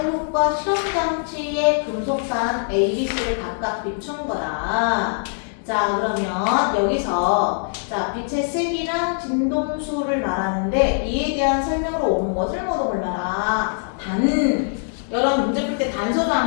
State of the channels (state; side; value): silent; right; 59 dB below the other